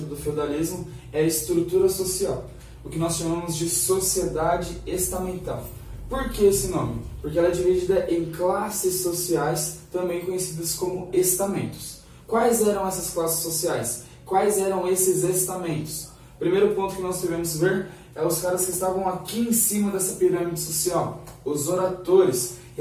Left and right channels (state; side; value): identical; both; correlation 1.00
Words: do feudalismo é a estrutura social, o que nós chamamos de sociedade estamental. Por que esse nome? Porque ela é dividida em classes sociais, também conhecidas como estamentos. Quais eram essas classes sociais? Quais eram esses estamentos? O primeiro ponto que nós devemos ver é os caras que estavam aqui em cima dessa pirâmide social, os oratores,